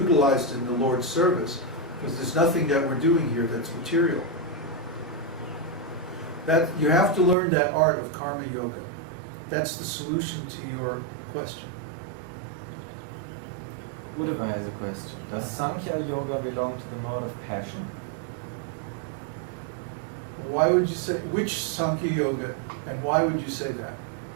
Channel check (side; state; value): left; drops out; at 7.4 s